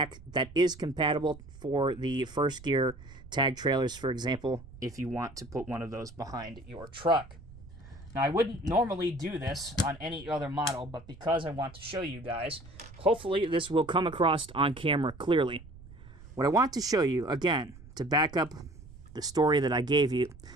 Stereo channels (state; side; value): noise; right; rumble, 18 dB below the sound